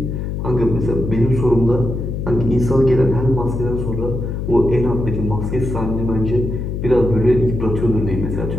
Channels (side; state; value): left; noise; hum, 4 dB below the sound